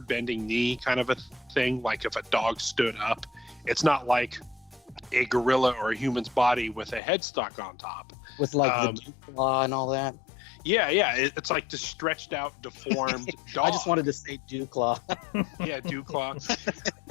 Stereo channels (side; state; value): right; drops out; at 7.0 s